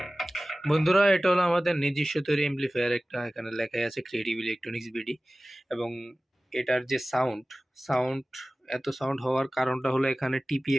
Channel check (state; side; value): normal; both; correlation 0.97